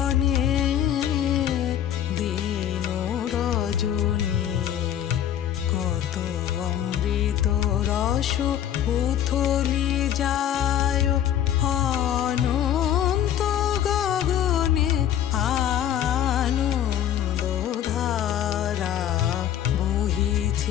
দিন রজনী। কত অমৃত রস উথলি যায় অনন্ত গগনে, আনন্দ ধারা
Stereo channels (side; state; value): right; quieter; 10.6 dB